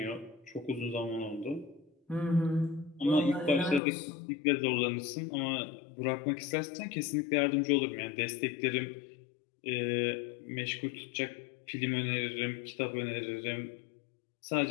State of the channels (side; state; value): right; drops out; at 3.8 s